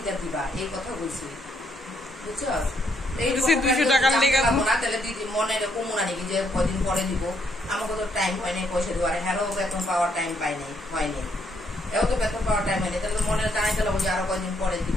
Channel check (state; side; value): normal; both; correlation 0.73